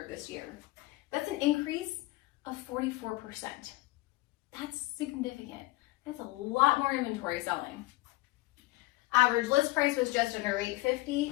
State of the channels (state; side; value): quieter; right; 20.0 dB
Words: this year. That's an increase of 44%. That's significant. That's a lot more inventory selling. Average list price was just under